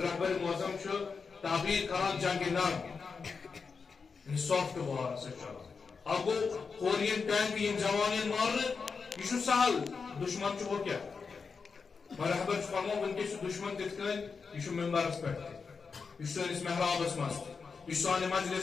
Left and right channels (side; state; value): right; quieter; 5.2 dB